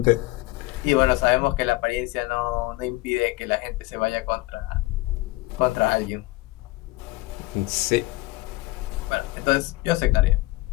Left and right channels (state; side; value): quieter; right; 19.5 dB